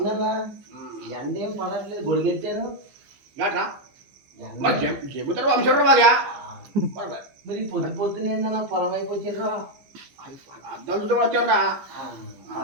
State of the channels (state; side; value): late; left; 15 ms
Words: ఎండ ఏం పడట్లేదు గొడిగెట్టాను. ఏంట్రా మరి చెబుతారు వంశరు బాగా మరి పొద్దు పొద్దున ఏందన్నా పొలం వైపు వచ్చిండ్రా. అద్దం చుట్టూ వచ్చారా